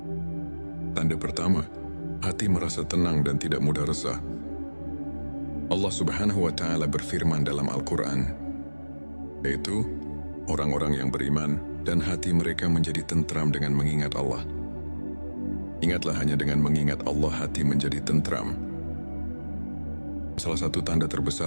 Tanda pertama, hati merasa tenang dan tidak mudah resah. Allah Subhanahu wa Ta'ala berfirman dalam Al-Quran, yaitu orang-orang yang beriman dan hati mereka menjadi tentram dengan mengingat Allah. Ingatlah, hanya dengan mengingat Allah hati menjadi tentram. Salah satu tanda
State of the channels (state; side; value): inverted; both; correlation -1.00